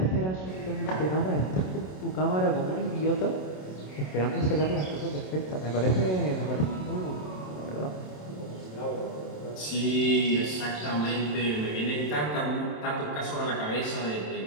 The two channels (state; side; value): late; right; 27 ms